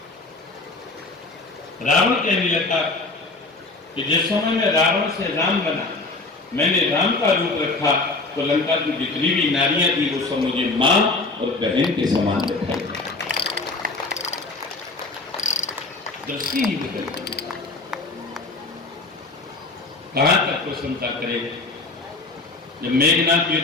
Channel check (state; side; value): quieter; right; 3.4 dB